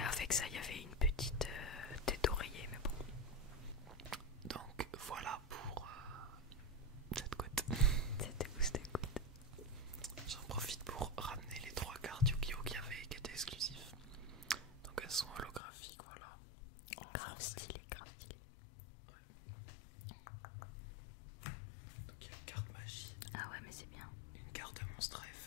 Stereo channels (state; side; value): drops out; right; at 15.6 s